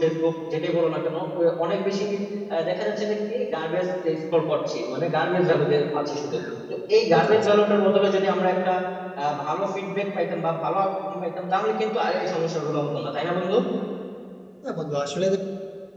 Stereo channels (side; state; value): both; identical; correlation 1.00